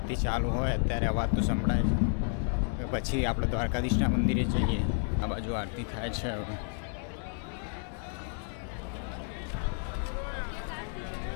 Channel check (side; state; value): right; silent; 57 dB below the other